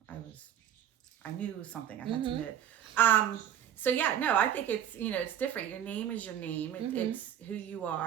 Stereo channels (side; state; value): left; quieter; 10.1 dB